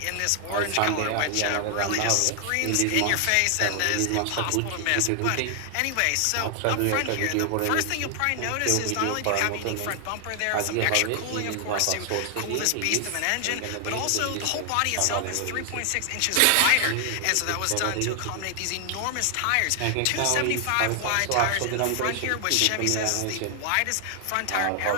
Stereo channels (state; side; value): different; both; correlation 0.00